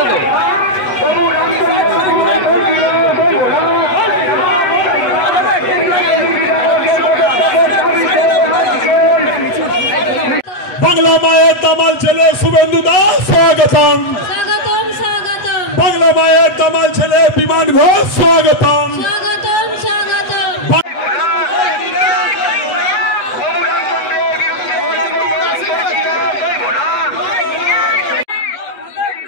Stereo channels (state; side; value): late; right; 8.1 ms